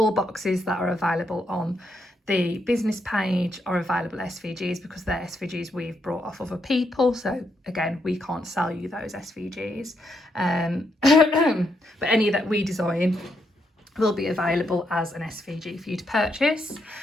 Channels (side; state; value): both; normal; correlation 0.79